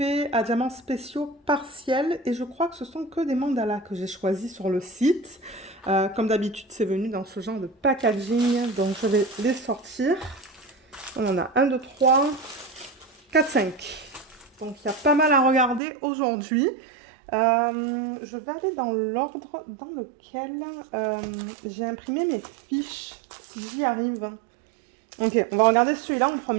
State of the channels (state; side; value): drops out; left; at 15.8 s